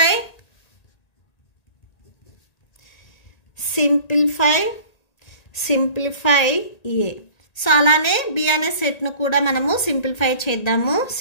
ఏ. సో అలానే బి అనే సెట్ ను కూడా మనము సింప్లిఫై చేద్దాము.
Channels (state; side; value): late; right; 1.8 ms